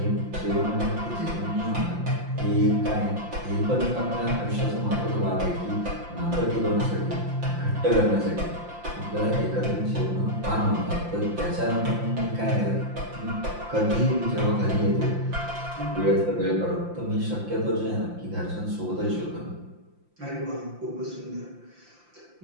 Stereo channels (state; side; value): late; left; 5.8 ms